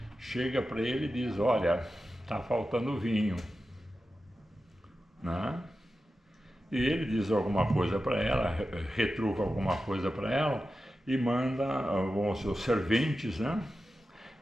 Chega para ele e diz: olha, está faltando vinho, né? E ele diz alguma coisa para ela, retruca alguma coisa para ela e manda os serventes, né,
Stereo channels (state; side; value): normal; both; correlation 0.92